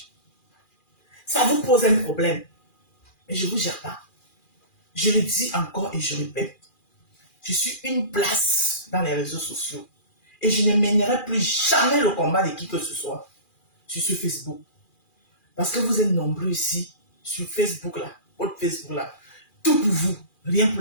Ça vous pose un problème. Mais je ne vous gère pas. Je le dis encore et je répète. Je suis une place dans les réseaux sociaux. Et je ne mènerai plus jamais le combat de qui que ce soit sur Facebook. Parce que vous êtes nombreux ici, sur Facebook là, votre Facebook là. Tout pour vous, rien pour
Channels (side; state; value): right; late; 2.4 ms